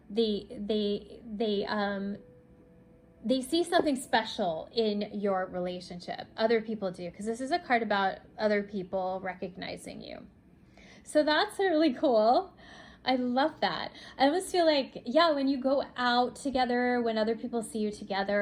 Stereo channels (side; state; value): both; identical; correlation 1.00